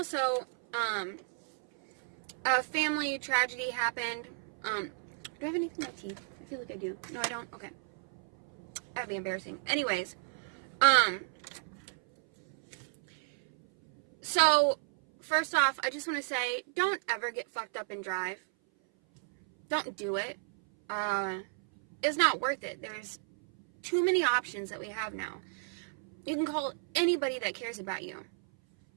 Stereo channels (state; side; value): silent; left; 56 dB below the other